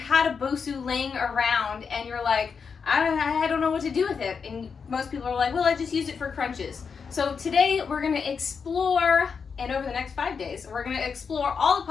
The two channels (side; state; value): right; quieter; 5.9 dB